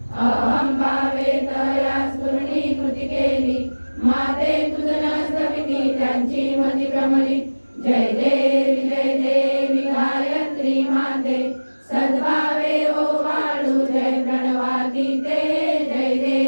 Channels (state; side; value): inverted; both; correlation -1.00